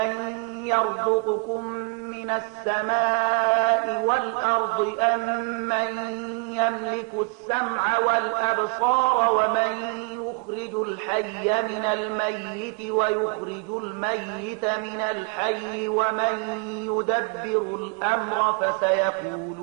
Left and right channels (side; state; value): left; quieter; 35.5 dB